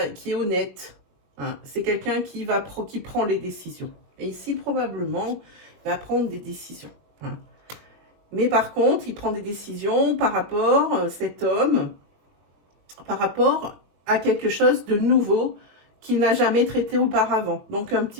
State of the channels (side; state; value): left; late; 21 ms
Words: est honnête. Hein. C'est quelqu'un qui prend les décisions. Et ici, probablement, il va prendre des décisions. Hein. Mais par contre, il prend des décisions par rapport, cet homme, par rapport à quelque chose de nouveau qu'il n'a jamais traité auparavant. Donc un